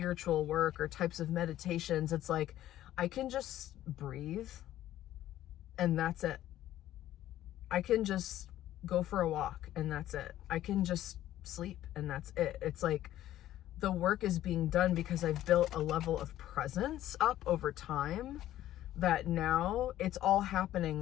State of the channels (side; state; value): right; quieter; 13.3 dB